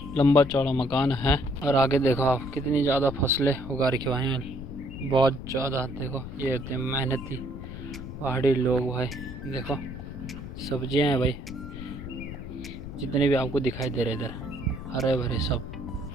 लंबा चौड़ा मकान है, और आगे देखो आप कितनी ज़्यादा फसलें उगा रखी भाई, बहुत ज़्यादा। देखो ये होते हैं मेहनती पहाड़ी लोग भाई, देखो सब्जियां हैं भाई जितने भी आपको दिखाई दे रहे इधर, हरे भरे सब।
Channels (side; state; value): left; noise; rumble, 10 dB below the sound